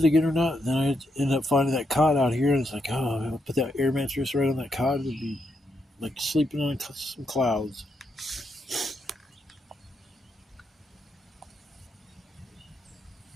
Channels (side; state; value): both; normal; correlation 0.81